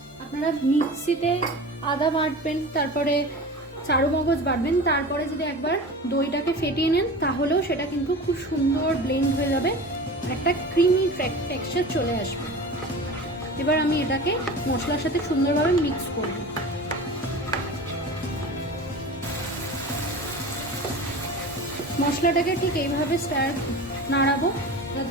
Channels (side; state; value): both; normal; correlation 0.34